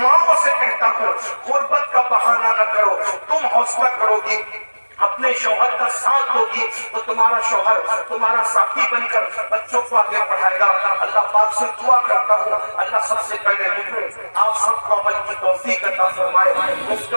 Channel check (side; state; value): both; inverted; correlation -1.00